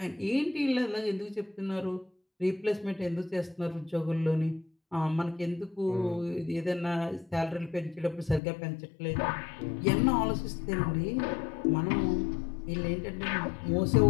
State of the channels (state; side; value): drops out; right; at 8.4 s